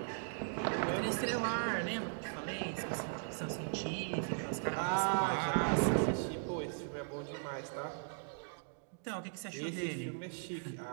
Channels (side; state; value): left; silent; digital silence